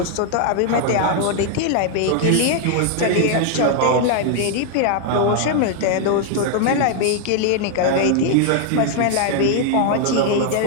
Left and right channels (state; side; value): different; both; correlation 0.00